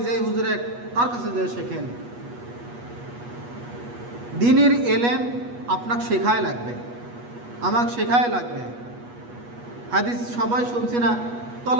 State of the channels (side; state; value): left; late; 8.3 ms